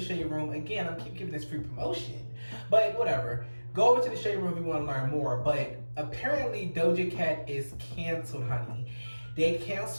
Room. Again, I'm keep giving this free promotion, but whatever. Go over to the Shade Room if you want to learn more. But apparently Doja Cat is canceled, honey. They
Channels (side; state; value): both; inverted; correlation -1.00